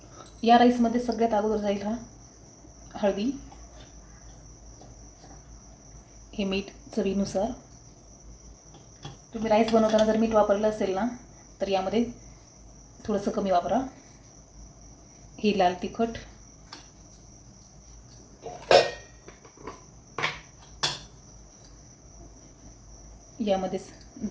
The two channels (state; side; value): identical; both; correlation 1.00